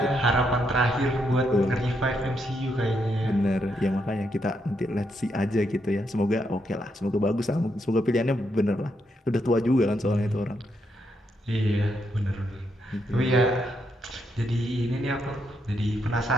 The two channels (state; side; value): normal; both; correlation 0.78